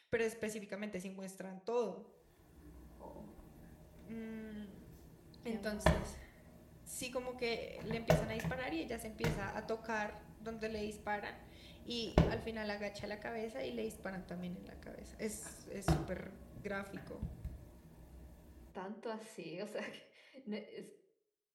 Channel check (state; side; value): identical; both; correlation 1.00